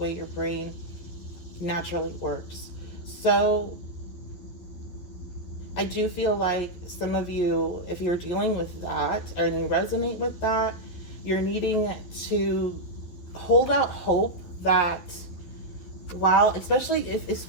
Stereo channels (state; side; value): late; right; 12 ms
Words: your brain naturally works. So I do feel like some of you, if you're dealing with that and you resonate with that, you're needing to hold out hope that, while, especially